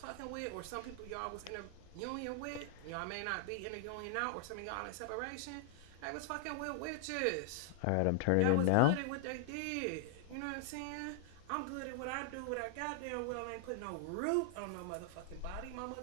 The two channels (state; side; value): different; both; correlation 0.00